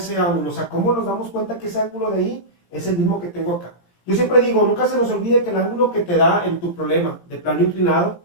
ángulo, o sea, cómo nos damos cuenta que ese ángulo de ahí es el mismo que tengo acá. Yo siempre digo, nunca se nos olvide que el ángulo que te da en tu problema de plano inclinado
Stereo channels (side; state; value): right; late; 17 ms